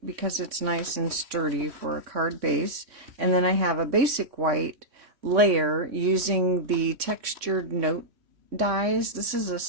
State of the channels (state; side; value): late; left; 3.6 ms